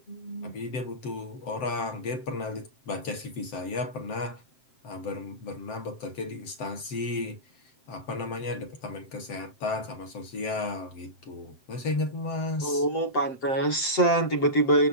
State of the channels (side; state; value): right; late; 7.7 ms